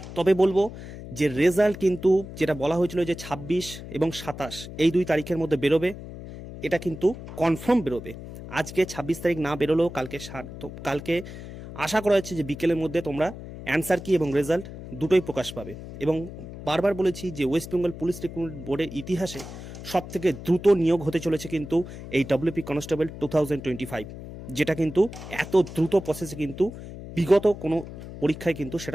তবে বলবো যে রেজাল্ট কিন্তু যেটা বলা হয়েছিল যে 26 এবং 27 এই 2 তারিখের মধ্যে বেরোবে, এটা কিন্তু কনফার্ম বেরোবে। আজকে 26 তারিখ না বেরোলেও কালকে আশা করা হচ্ছে যে বিকেলের মধ্যে তোমরা অ্যান্সার কি এবং রেজাল্ট দুটোই প্রকাশ পাবে। এবং বারবার বলেছি যে ওয়েস্ট বেঙ্গল পুলিশ রিক্রুটমেন্ট বোর্ডের ইতিহাসে সবথেকে দ্রুত নিয়োগ হতে চলেছে কিন্তু এই ডব্লিউপি কনস্টেবল 2025, যেটা কিন্তু এত দ্রুত প্রসেসে কিন্তু বিগত কোনো পরীক্ষায় কিন্তু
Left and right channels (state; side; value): noise; left; hum, 12 dB below the sound